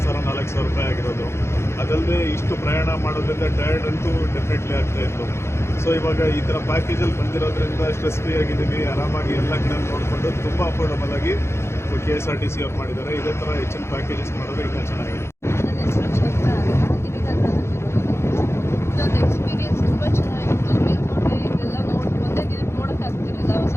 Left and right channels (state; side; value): late; right; 0.13 ms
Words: ರೂಪಾಯಿ ಆಗಿರೋದು. ಅದಲ್ಲದೆ ಇಷ್ಟು ಪ್ರಯಾಣ ಮಾಡೋದ್ರಿಂದ ಟಯರ್ಡ್ ಅಂತೂ ಡೆಫಿನೆಟ್ಲಿ ಆಗ್ತಾಯಿತ್ತು. ಸೊ ಇವಾಗ ಈ ಥರ ಪ್ಯಾಕೇಜಲ್ಲಿ ಬಂದಿರೋದ್ರಿಂದ ಸ್ಟ್ರೆಸ್ ಫ್ರೀ ಆಗಿದ್ದೀವಿ, ಆರಾಮಾಗಿ ಎಲ್ಲ ಕಡೆ ನೋಡಿಕೊಂಡು ತುಂಬ ಅಫೋರ್ಡಬಲ್ ಆಗಿ KSRTC ಅವ್ರು ಮಾಡಿದ್ದಾರೆ. ಇದೇ ಥರ ಹೆಚ್ಚಿನ ಪ್ಯಾಕೇಜಸ್ ಮಾಡೋದು ಇನ್ನೂ ಚೆನ್ನಾಗಿದೆ. ನನ್ನ ಹೆಸರು ಚೈತ್ರ ಅಂತ, ಇದೊಂದು ಎಕ್ಸ್ಪೀರಿಯನ್ಸ್ ತುಂಬ ಚೆನ್ನಾಗಿತ್ತು. ಮೇಲ್ಕೋಟೆ ಇದೆಲ್ಲ ಒಂದೇ ದಿನಕ್ಕೆ ನೋಡೋಕ್ಕಾಗ್ತಿರಲಿಲ್ಲ